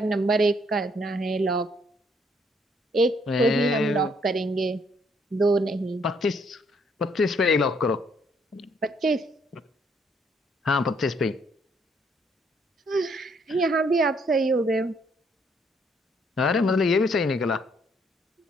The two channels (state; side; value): normal; both; correlation 0.68